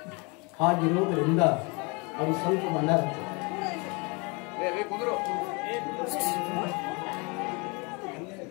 ಹಾಗಿರೋದ್ರಿಂದ ಅವ್ರು ಸ್ವಲ್ಪ ಮಂಡಾರ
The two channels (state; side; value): quieter; right; 29.1 dB